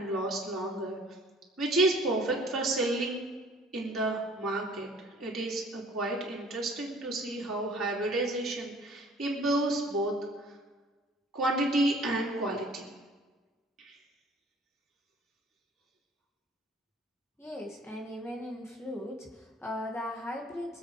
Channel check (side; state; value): both; normal; correlation 0.52